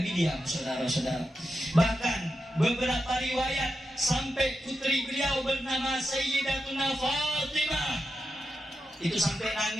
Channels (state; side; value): normal; both; correlation 0.88